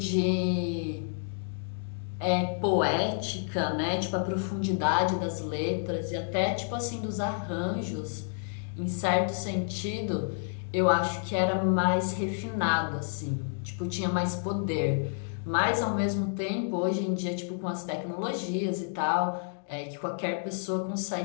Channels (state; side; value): silent; right; digital silence